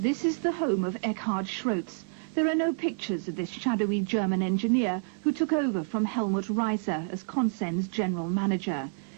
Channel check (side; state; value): left; silent; 59 dB below the other